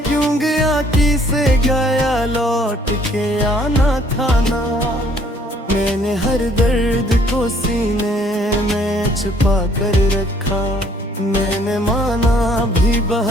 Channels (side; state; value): both; normal; correlation 0.62